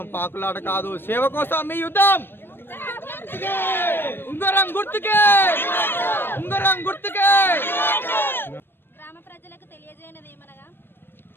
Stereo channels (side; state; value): right; late; 0.10 ms